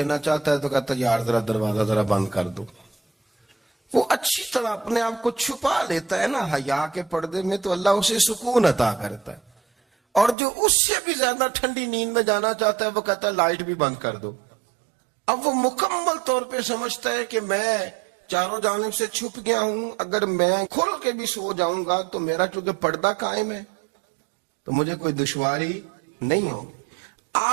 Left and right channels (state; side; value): drops out; left; at 10.4 s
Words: چاہتا ہے تو کہتا ہے یار ذرا دروازہ ذرا بند کر دو۔ وہ اچھی طرح اپنے آپ کو چھپا لیتا ہے نا حیا کے پردے میں، تو اللہ اسے سکون عطا کرتا ہے۔ اور جو اس سے بھی زیادہ ٹھنڈی نیند میں جانا چاہتا ہے وہ کہتا ہے لائٹ بھی بند کر دو۔ اب وہ مکمل طور پہ سمجھتا ہے کہ میں چاروں جانب سے چھپ گیا ہوں، اگر میں کھل کے بھی سو جاؤں گا تو میرا چونکہ پردہ قائم ہے تو مجھے کوئی دشواری نہیں ہوگی۔